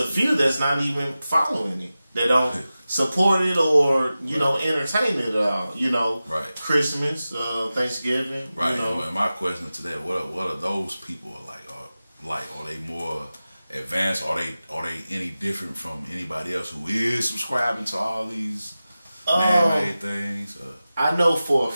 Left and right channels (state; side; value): inverted; both; correlation -0.95